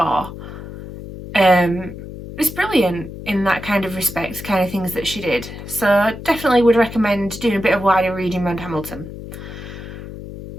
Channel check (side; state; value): left; noise; hum, 12 dB below the sound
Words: It's brilliant in that kind of respect, kind of things that she did. So definitely would recommend doing a bit of wider reading around Hamilton.